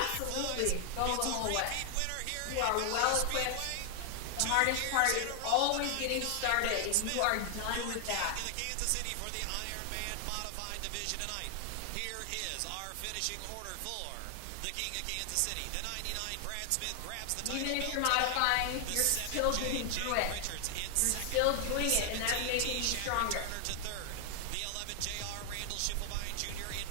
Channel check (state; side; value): different; both; correlation 0.00